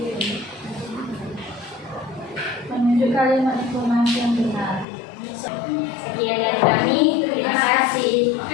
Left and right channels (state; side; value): drops out; right; at 4.9 s